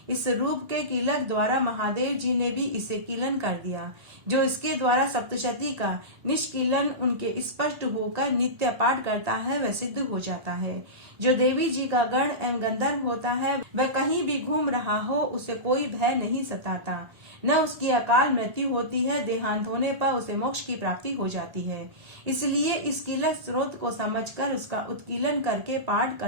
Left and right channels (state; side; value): late; left; 1.8 ms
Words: इस रूप के कीलक द्वारा महादेव जी ने भी इसे कीलन कर दिया। जो इसके द्वारा सप्तशती का निष्कीलन उनके स्पष्ट होकर नित्य पाठ करता है वह सिद्ध हो जाता है। जो देवी जी का गण एवं गंधर्व होता है वह कहीं भी घूम रहा हो उसे कोई भय नहीं सताता, न उसकी अकाल मृत्यु होती है। देहांत होने पर उसे मोक्ष की प्राप्ति हो जाती है। इसलिए इस कीलक स्रोत को समझकर उसका उत्कीलन करके पाठ